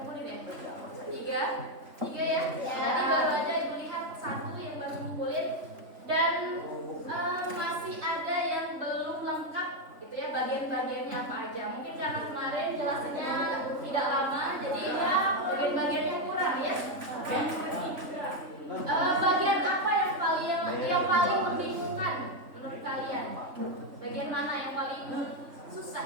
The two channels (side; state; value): left; late; 3.4 ms